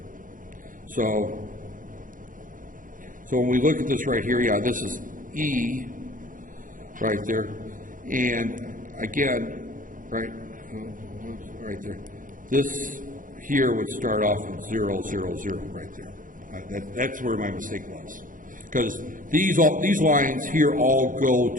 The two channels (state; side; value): late; left; 0.39 ms